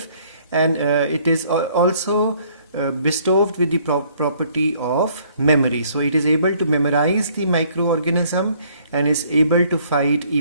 and it is also bestowed with the property of memory. So it is able to memorize the microorganism and is able to fight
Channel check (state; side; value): inverted; both; correlation -0.62